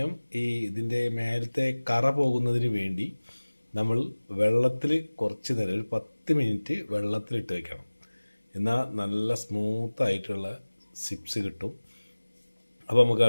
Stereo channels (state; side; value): inverted; both; correlation -1.00